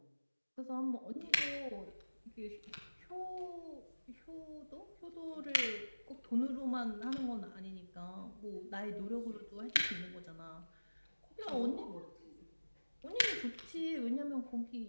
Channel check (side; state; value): both; inverted; correlation -1.00